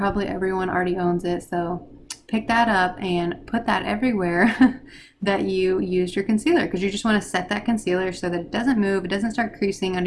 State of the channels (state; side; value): identical; both; correlation 1.00